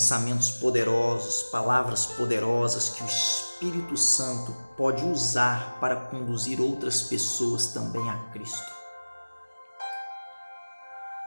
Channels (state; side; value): inverted; both; correlation -1.00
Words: poderosos, palavras poderosas que o Espírito Santo pode usar para conduzir outras pessoas também a Cristo.